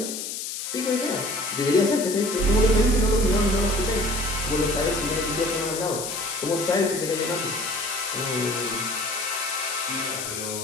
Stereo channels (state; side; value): noise; left; hiss, 5 dB below the sound